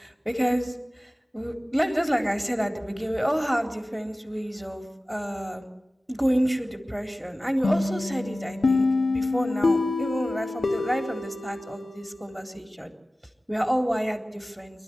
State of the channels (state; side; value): normal; both; correlation 0.97